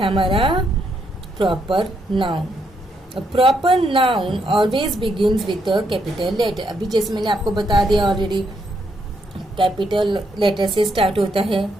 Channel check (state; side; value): normal; both; correlation 0.77